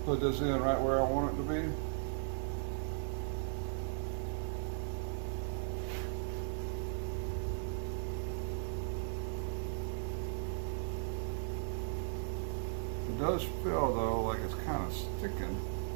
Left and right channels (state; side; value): silent; left; 53 dB below the other